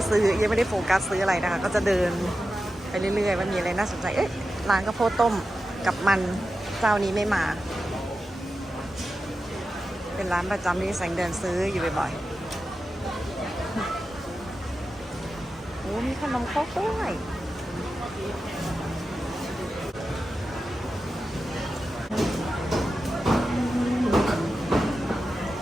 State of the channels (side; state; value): both; normal; correlation 0.92